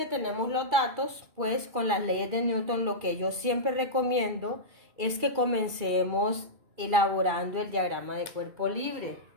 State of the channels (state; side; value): late; left; 2.3 ms